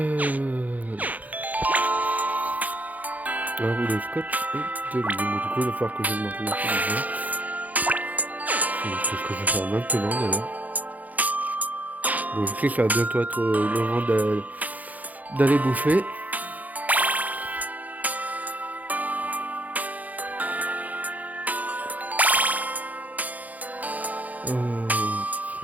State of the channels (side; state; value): left; late; 0.078 ms